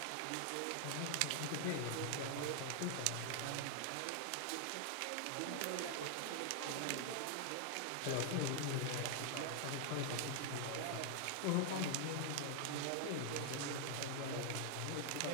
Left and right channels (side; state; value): both; different; correlation 0.00